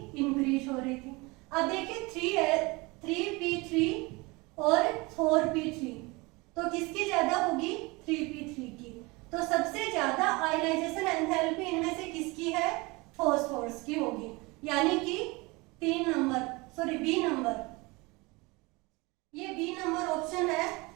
इंक्रीज हो रही थी। अब देखिए 3p3 और 4p3, तो किसकी ज्यादा होगी, 3p3 की। तो सबसे ज्यादा आयनाइजेशन एंथैल्पी इनमें से किसकी है, फॉस्फोरस की होगी, यानी कि 3 नंबर, सॉरी बी नंबर, ये बी नंबर ऑप्शन है,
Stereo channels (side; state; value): left; quieter; 24.9 dB